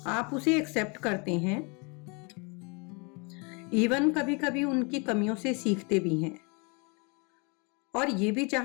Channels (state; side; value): quieter; right; 31.8 dB